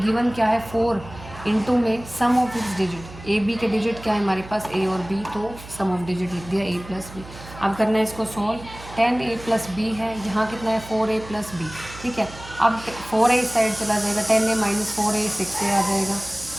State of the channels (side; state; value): right; noise; hum, 16 dB below the sound